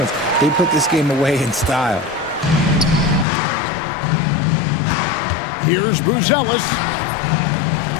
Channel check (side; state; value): right; drops out; at 3.2 s